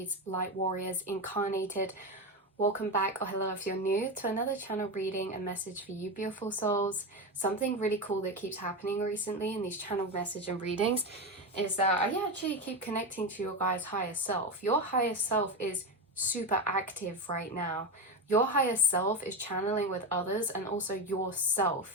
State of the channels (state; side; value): normal; both; correlation 0.17